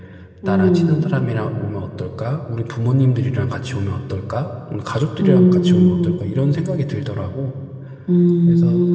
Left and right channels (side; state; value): both; identical; correlation 1.00